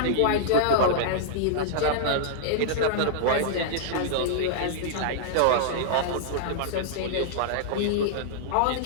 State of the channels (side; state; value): both; different; correlation -0.02